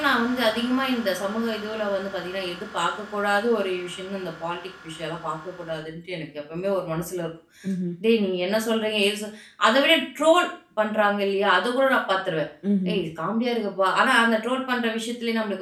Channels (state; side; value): identical; both; correlation 1.00